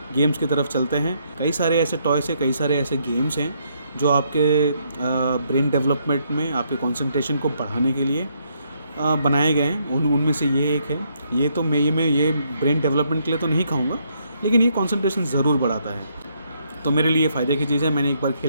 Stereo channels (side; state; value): both; inverted; correlation -0.73